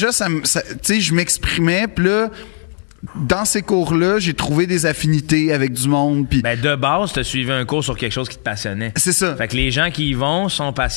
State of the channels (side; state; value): right; silent; 68 dB below the other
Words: je m'exprimais, puis là, dans ces cours-là, j'ai trouvé des affinités avec du monde, puis... Ben, de base, t'as suivi un cours sur quelque chose qui te passionnait. C'est ça. Fait que les gens qui y vont sont